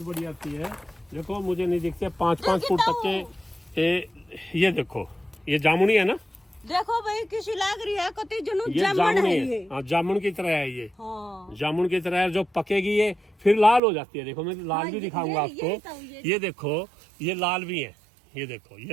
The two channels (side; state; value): left; drops out; at 13.8 s